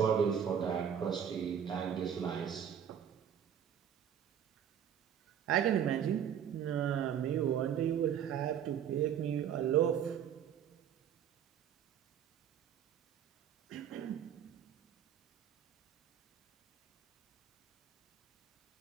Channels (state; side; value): quieter; left; 8.8 dB